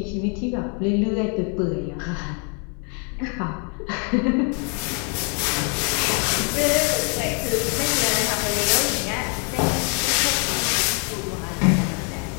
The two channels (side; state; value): right; quieter; 38.6 dB